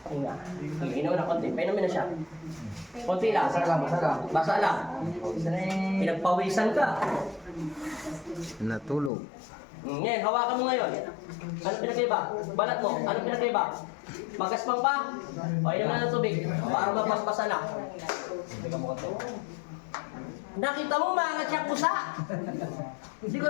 Hinga. Hinga mo na konti. Painumin na siya. Konti lang. Basa lang, basa lang. Basa lang. Pinagpawisan ka. Natulog. Ngayon, hawakan mo ngayon. Ano pinagkaiba? Balat mo. Ano pinagkaiba? Magaspang pa? O, inom na ng tubig. Para mapaspasan na. Nakita mo, maangat siya pusa. Hindi ko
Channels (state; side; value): drops out; right; at 9.1 s